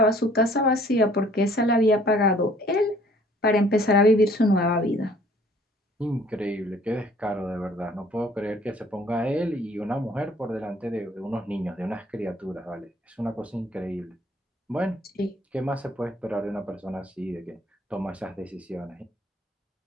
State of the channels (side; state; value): both; normal; correlation 0.57